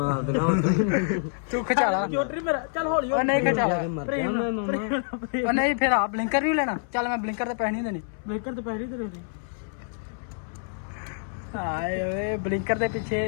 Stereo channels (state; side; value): silent; right; 60 dB below the other